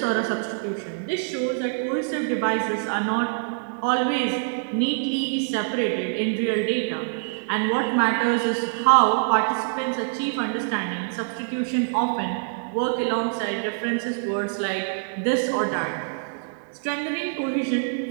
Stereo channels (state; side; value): silent; left; 60 dB below the other